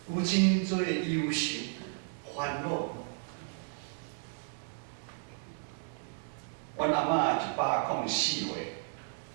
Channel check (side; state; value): left; silent; 56 dB below the other